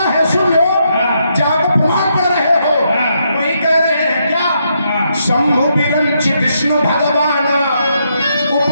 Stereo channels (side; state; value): both; inverted; correlation -0.78